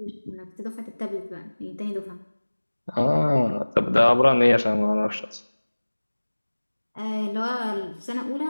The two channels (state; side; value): inverted; both; correlation -1.00